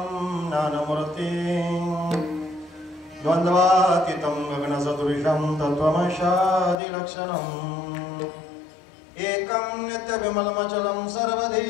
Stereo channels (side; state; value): right; drops out; at 6.8 s